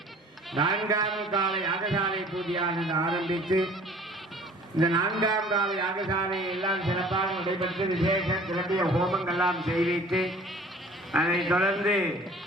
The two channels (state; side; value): normal; both; correlation 0.50